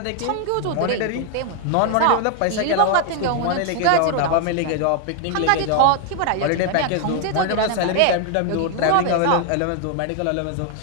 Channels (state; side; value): different; both; correlation 0.00